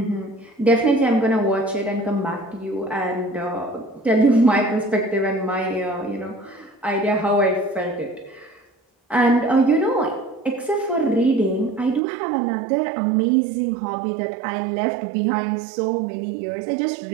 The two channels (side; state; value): left; drops out; at 12.0 s